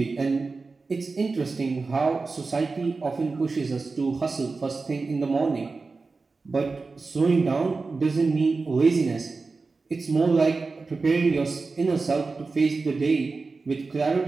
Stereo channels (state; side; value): quieter; left; 4.0 dB